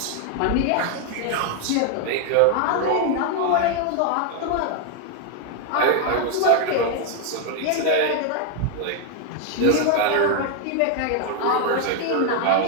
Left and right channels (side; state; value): both; different; correlation 0.01